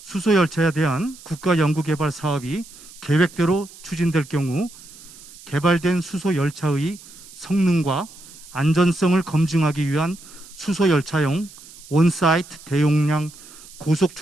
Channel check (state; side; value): noise; right; hiss, 20 dB below the sound